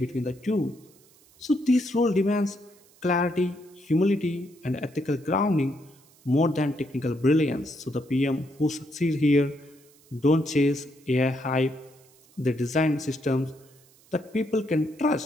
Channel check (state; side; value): noise; right; hiss, 29 dB below the sound